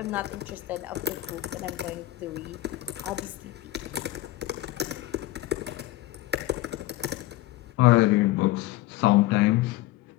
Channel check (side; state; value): right; quieter; 16.7 dB